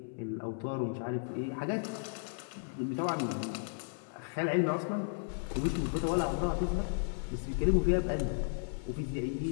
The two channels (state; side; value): silent; right; 55 dB below the other